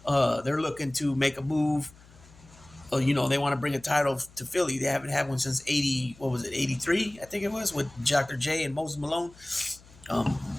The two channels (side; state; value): left; noise; hum, 24 dB below the sound